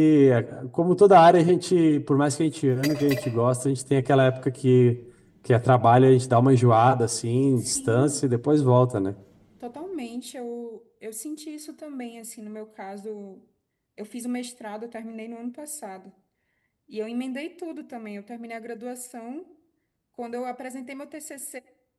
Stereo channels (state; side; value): identical; both; correlation 1.00